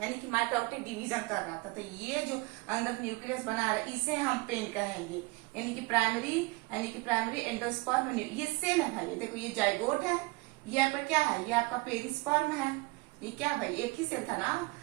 यानी कि माइटोटिक डिवीजन कर रहा था। तो ये जो अंदर न्यूक्लियस बना रहा है, इसे हम पेन कहेंगे, यानी कि प्राइमरी एंडोस्पर्म। ये सेल है भाई, देखो ये जाइगोट है, ये आपका क्या है, ये आपका पेरिस्पर्म है। ये क्या भाई, एक ही सेल था ना।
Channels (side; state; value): left; quieter; 24.6 dB